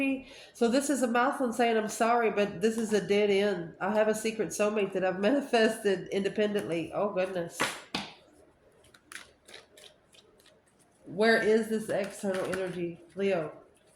So this is a masculine saying, I'm sorry, but this is a dead end. I have a secret soulmate that I've manifested independently. Oh, goodness. Where is this external energy? Leo.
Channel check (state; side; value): identical; both; correlation 1.00